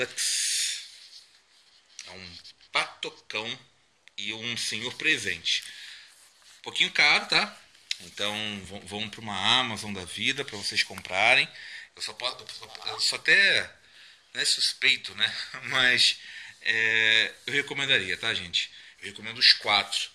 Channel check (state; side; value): identical; both; correlation 1.00